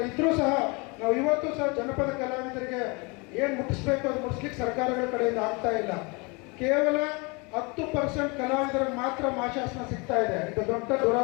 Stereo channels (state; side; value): quieter; right; 29.1 dB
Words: ಇದ್ರೂ ಸಹ ನಾವು ಇವತ್ತು ಸಹ ಜನಪದ ಕಲಾವಿದರಿಗೆ ಏನು ಮುಟ್ಟಿಸ್ಬೇಕು ಅದು ಮುಟ್ಟಿಸ್ಲಿಕ್ಕೆ ಸರ್ಕಾರಗಳ ಕಡೆಯಿಂದ ಆಗ್ತಾ ಇಲ್ಲ. ಕೇವಲ 10% ಕಲಾವಿದರಿಗೆ ಮಾತ್ರ ಮಾಶಾಸನ ಸಿಗ್ತಾ ಇದೆ. ಇದು ದೊಡ್ಡ